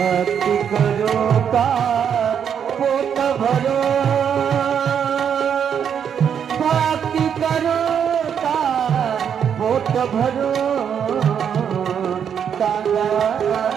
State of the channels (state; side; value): quieter; left; 8.0 dB